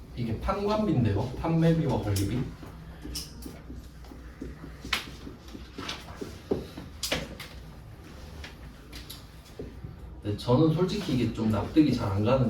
이게 판관비인데요. 판매비와 관리비. 네, 저는 솔직히 이게 좀 납득이 잘 안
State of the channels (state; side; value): identical; both; correlation 1.00